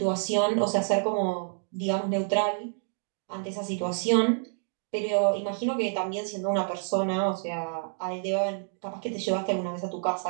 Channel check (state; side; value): silent; left; digital silence